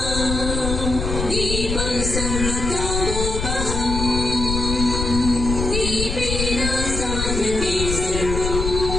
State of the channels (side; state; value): left; noise; rumble, 3 dB below the sound